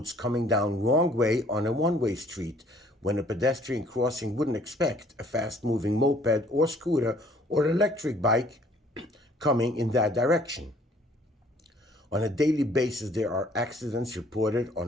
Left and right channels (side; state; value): both; normal; correlation 0.59